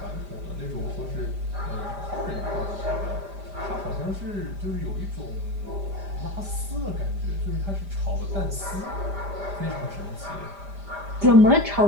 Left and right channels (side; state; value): left; late; 5.0 ms